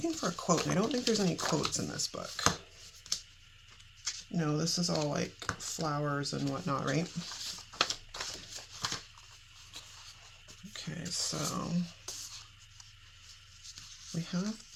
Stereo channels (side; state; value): both; identical; correlation 1.00